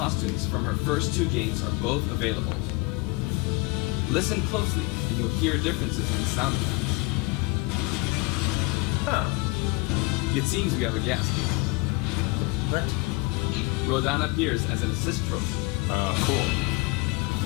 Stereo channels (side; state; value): right; quieter; 25.0 dB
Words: from her first 2 games are both available. Listen closely, and you'll hear differences in the sound effects. Huh. It seems we have a guest. What? Rodan appears as an assist trophy. Cool.